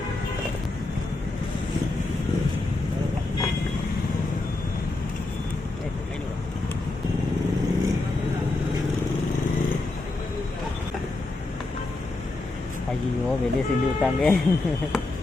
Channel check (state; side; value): quieter; right; 3.0 dB